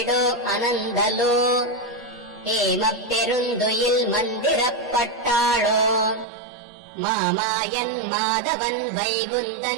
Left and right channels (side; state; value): left; drops out; at 6.2 s